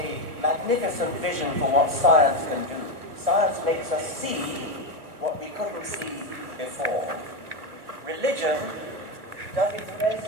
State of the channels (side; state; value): left; late; 1.3 ms